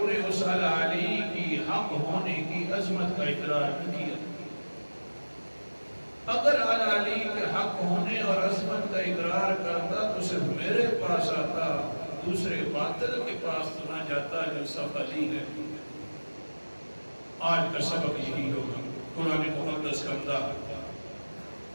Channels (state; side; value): inverted; both; correlation -1.00